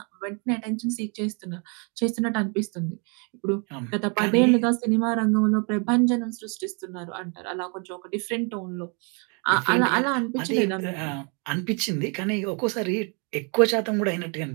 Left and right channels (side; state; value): left; quieter; 35.4 dB